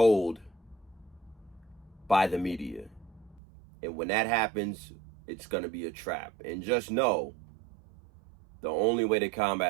by the media. And when that happens, it's going to be a trap. And just know, the only way to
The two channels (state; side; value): drops out; left; at 3.4 s